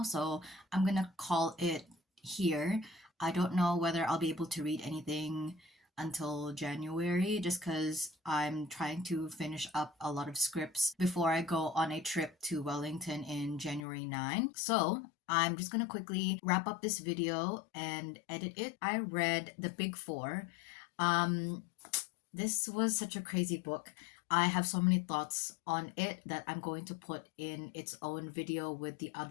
so I'm going to call it here. I don't know whether I'll be able to read anything until January, just because I'm trying to finish up a lot of scripts before I go on a trip to Wellington in January 9. So I'm just gonna quickly wrap up this video and edit it. I read The Big Four. This was such a crazy book. I have so many thoughts on it that I'm going to put in its own video with the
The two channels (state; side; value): drops out; right; at 13.9 s